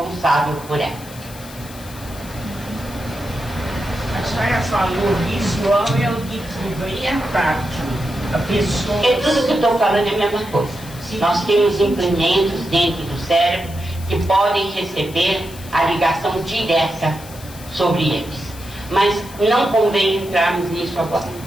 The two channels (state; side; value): noise; left; hiss, 18 dB below the sound